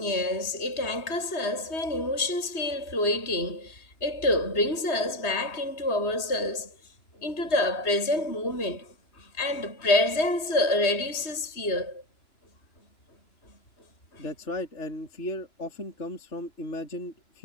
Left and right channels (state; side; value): late; right; 3.2 ms